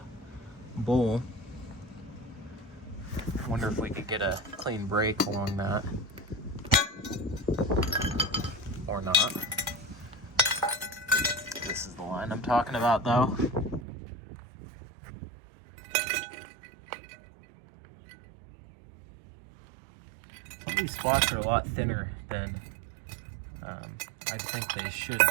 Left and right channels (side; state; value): left; drops out; at 13.9 s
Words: bowl. Wonder if we could get a clean break along that. Or not. This is the line I'm talking about, though. Some of these spots are a lot thinner than I think they should